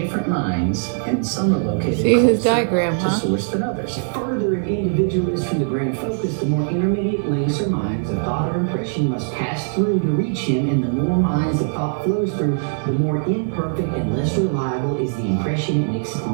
mines, and some are located See his closer diagram, to huh? source than others. The further an individual is from the grand focus, the more intermediate links or mines of thought or impression must pass through to reach him, and the more mines of thought flows through, the more imperfect and less reliable is the impression it makes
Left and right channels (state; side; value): silent; left; digital silence